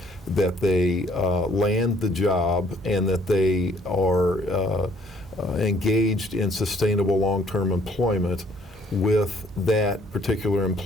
that they land the job, and that they are engaged in sustainable long-term employment with that particular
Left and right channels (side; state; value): both; normal; correlation 0.62